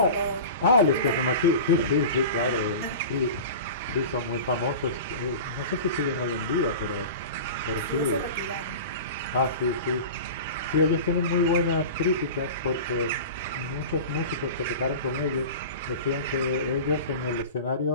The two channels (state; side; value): inverted; both; correlation -0.33